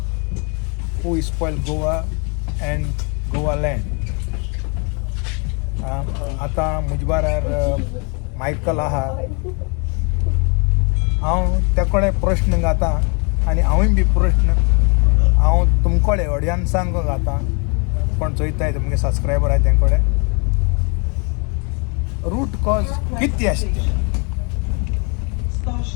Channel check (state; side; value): quieter; right; 34.4 dB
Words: who spoil Goa and Goa land. आता म्हजे बारार मायकल आहा. हांव ते कडेन प्रश्न घातां आनी हांवूय बी प्रश्न हांव तुमकडे ऑडियन्सांक घातां. पण चोयताय तुमगे सबस्क्रायबर आहे तेंकडे रूट कॉज किती असते.